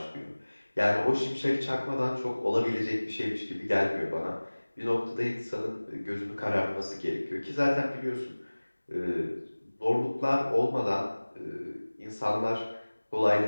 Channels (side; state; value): both; inverted; correlation -1.00